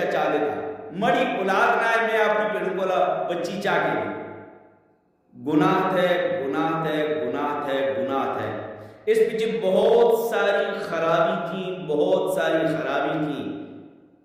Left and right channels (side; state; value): both; identical; correlation 1.00